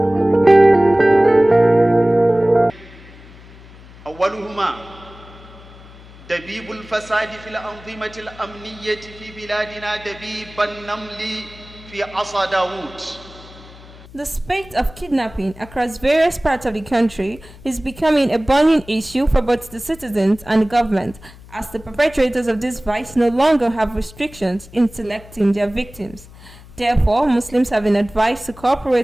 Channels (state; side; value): noise; left; hum, 20 dB below the sound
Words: دبيب الفساد في الأنظمة الأمنية في بلادنا دبيب النمل في عصا داوود. The spate of kidnapping across various parts of the country is becoming a burning issue for both the citizens and the government, as the perpetrators of this vice no longer have restrictions in selecting their victims. Therefore, Muslims have been advised to